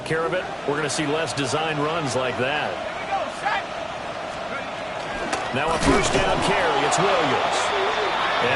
care of it, we're going to see less design runs like that. Now a first down carry. It's Williams.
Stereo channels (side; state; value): both; identical; correlation 1.00